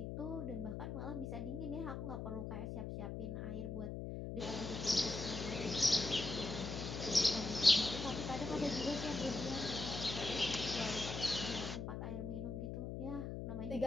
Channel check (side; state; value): left; noise; hum, 5 dB below the sound